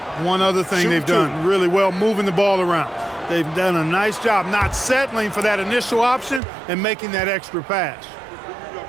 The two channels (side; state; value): left; drops out; at 6.4 s